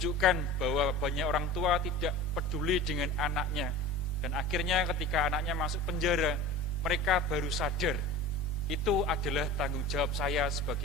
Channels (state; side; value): normal; both; correlation 0.35